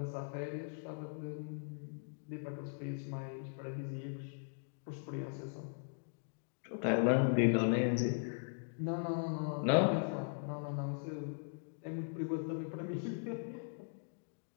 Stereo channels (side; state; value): right; silent; digital silence